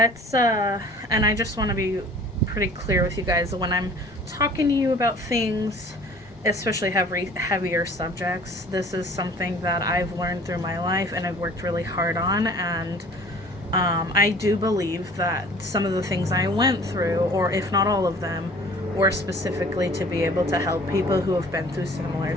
and I just want to be pretty clear with you guys when I'm talking to you about things, especially heavier subjects. This is something that I've learned through my life and I've worked really hard on, and I do believe that some of the things I went through, or if not all of them, were specifically to be able to help people who have been through similar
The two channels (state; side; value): normal; both; correlation 0.49